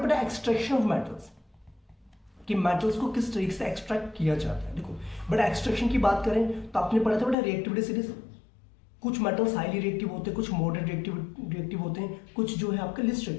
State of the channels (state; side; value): drops out; right; at 7.4 s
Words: बेटा एक्सट्रैक्शन ऑफ मेटल्स, कि मेटल्स को किस तरीके से एक्सट्रैक्ट किया जाता है। देखो बट एक्सट्रैक्शन की बात करें तो आपने पढ़ा था बेटा रिएक्टिविटी सीरीज। कुछ मेटल्स हाईली रिएक्टिव होते हैं, कुछ मॉडरेट रिएक्टिव होते हैं, कुछ जो है आपके लिस्ट